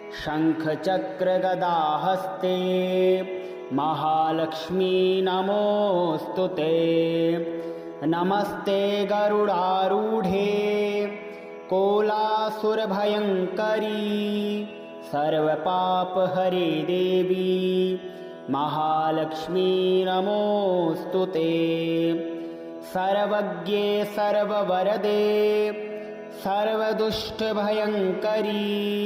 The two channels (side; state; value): both; identical; correlation 1.00